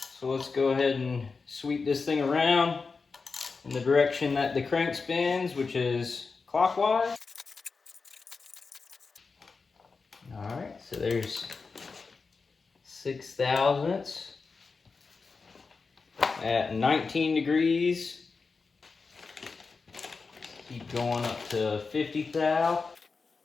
So let's go ahead and sweep this thing around in the direction that the crank spins, which is clockwise. Alright, so there's 6 thousandths at 19 degrees. Keep going up to 50 thou.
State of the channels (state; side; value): quieter; right; 4.6 dB